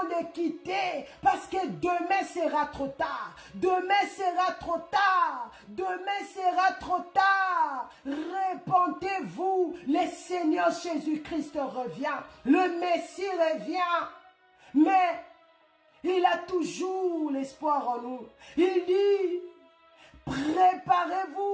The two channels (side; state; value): both; identical; correlation 1.00